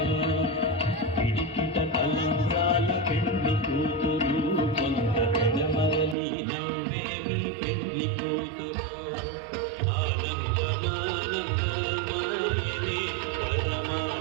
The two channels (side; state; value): left; drops out; at 6.2 s